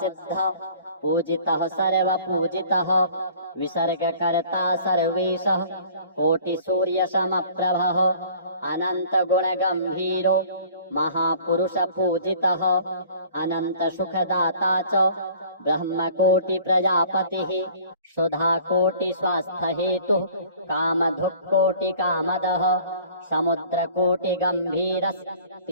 पूजितः सर्वपूजितः विसर्गकर्ता सर्वेशः कोटिसूर्यसमप्रभः अनन्तगुणगम्भीरो महापुरुषपूजितः अनन्तसुखदाता च ब्रह्मकोटिप्रजापतिः सुधाकोटिस्वास्थ्यहेतुः कामधुक्कोटिकामदः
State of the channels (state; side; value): inverted; both; correlation -0.50